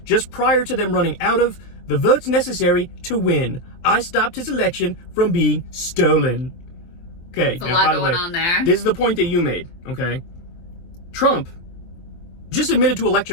just prior to them running out of the votes necessary to win. I stopped his election from being stolen. Okay, there's a lot going on there. This is the point that you made, okay? Trump just admitted to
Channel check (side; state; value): right; late; 23 ms